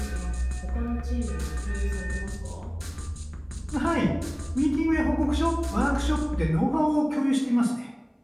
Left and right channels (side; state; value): both; identical; correlation 1.00